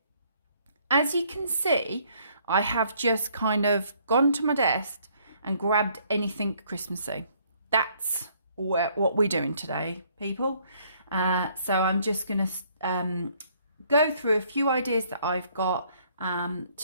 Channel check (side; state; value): both; inverted; correlation -0.64